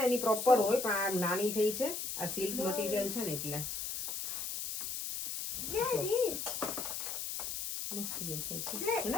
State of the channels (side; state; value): left; noise; hiss, 4 dB below the sound